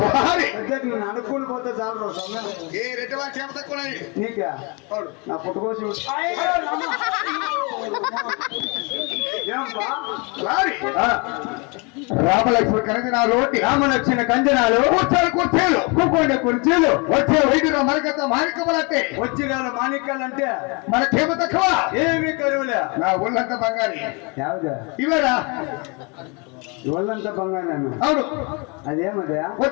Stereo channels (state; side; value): quieter; right; 30.9 dB